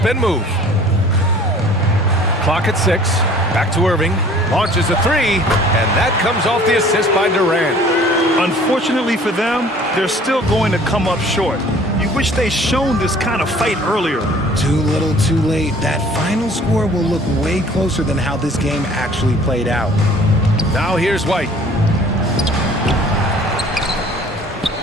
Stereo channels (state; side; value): normal; both; correlation 0.51